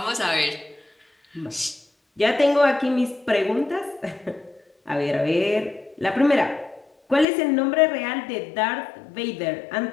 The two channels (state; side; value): drops out; right; at 7.2 s